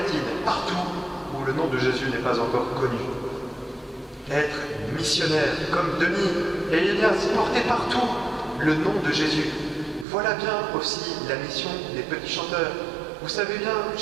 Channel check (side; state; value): left; drops out; at 10.1 s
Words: partout où le nom de Jésus n'est pas encore connu. Être missionnaire comme Denis et Ignace, porter partout le nom de Jésus. Voilà bien aussi la mission des petits chanteurs. Vous savez bien,